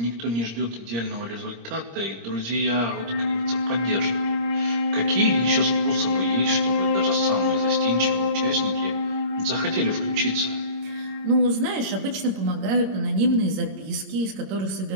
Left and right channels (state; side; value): late; left; 26 ms